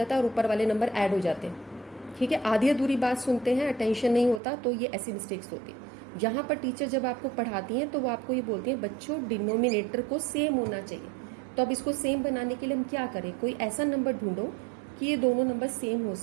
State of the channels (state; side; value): drops out; left; at 4.4 s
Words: है और ऊपर वाले नंबर ऐड हो जाते हैं। ठीक है, आधी अधूरी बात सुनते हैं, अटेंशन नहीं होता, तो ये ऐसी मिस्टेक्स होती है। यहाँ पर टीचर जब आपको पढ़ाती हैं तो वो आपको ये बोलती हैं बच्चों डिनोमिनेटर को सेम होना चाहिए। तो अब इसको सेम बनाने के लिए हम क्या करें, कोई ऐसा नंबर ढूंढो कि ये दोनों नंबर सेम हो